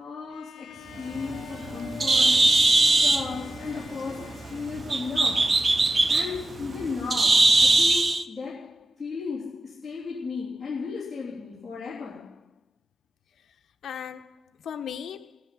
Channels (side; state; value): both; normal; correlation 0.93